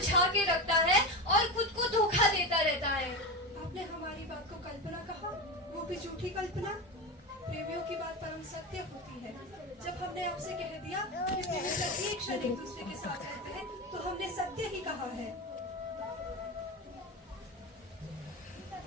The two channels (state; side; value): normal; both; correlation 0.21